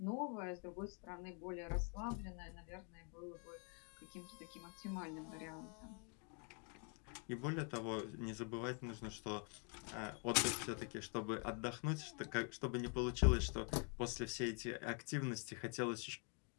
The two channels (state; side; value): quieter; right; 38.5 dB